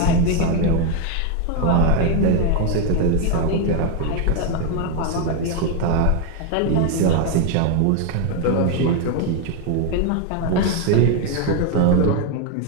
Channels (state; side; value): different; both; correlation 0.01